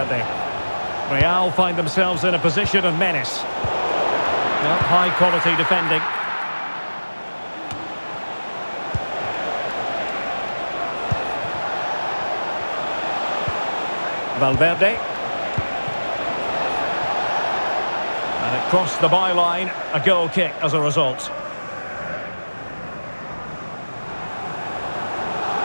Real find themselves in a position of menace. Well, high quality defending. Valverde. And it crossed the byline, a goal kick as a result.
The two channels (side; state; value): both; inverted; correlation -1.00